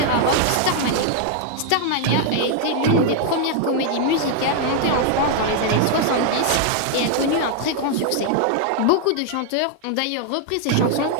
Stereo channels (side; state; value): both; different; correlation 0.00